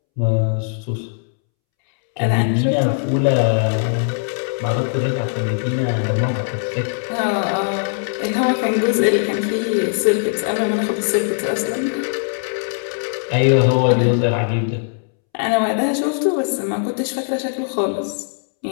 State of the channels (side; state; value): right; silent; 66 dB below the other